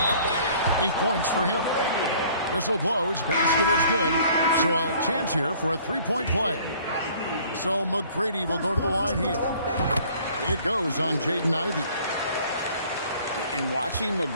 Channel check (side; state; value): both; inverted; correlation -0.54